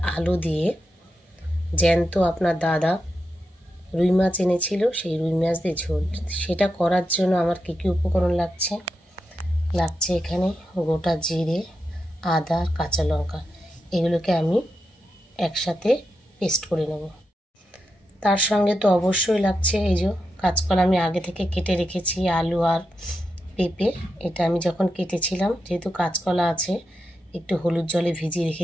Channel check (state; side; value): normal; both; correlation 0.87